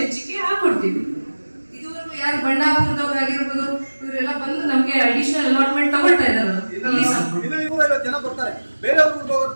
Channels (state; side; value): inverted; both; correlation -1.00